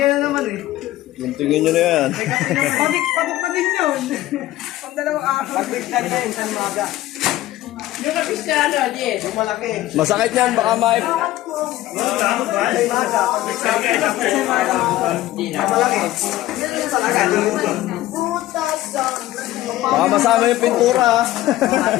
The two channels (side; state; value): right; quieter; 15.4 dB